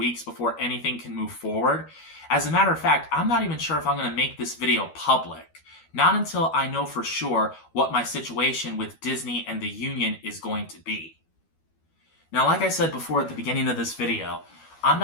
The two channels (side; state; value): right; late; 12 ms